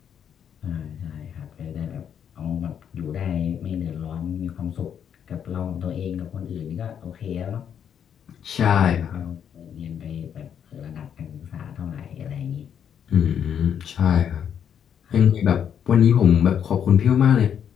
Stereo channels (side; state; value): right; quieter; 8.5 dB